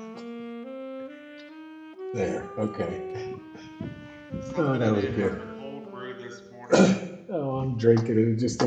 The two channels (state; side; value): identical; both; correlation 1.00